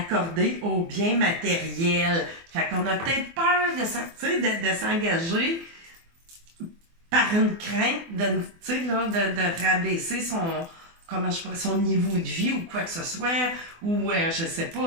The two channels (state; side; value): late; left; 24 ms